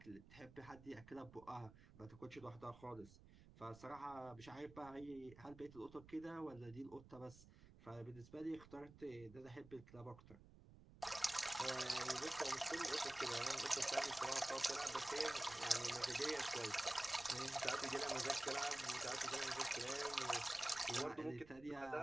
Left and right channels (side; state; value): right; noise; rumble, 20 dB below the sound